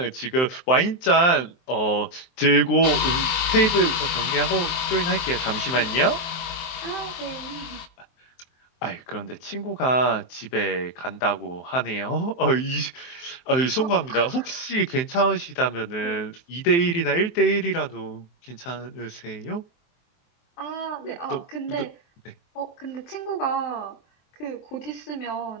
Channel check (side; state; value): right; late; 23 ms